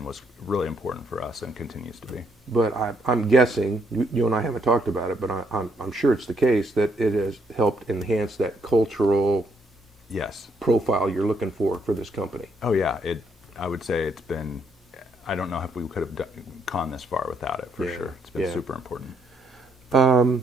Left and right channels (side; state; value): both; normal; correlation 0.73